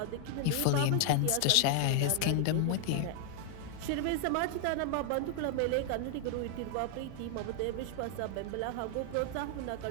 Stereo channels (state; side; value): different; both; correlation 0.00